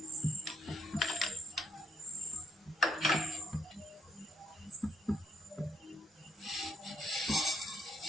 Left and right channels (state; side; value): normal; both; correlation 0.71